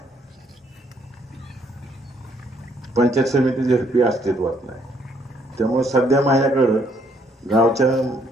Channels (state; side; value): normal; both; correlation 0.68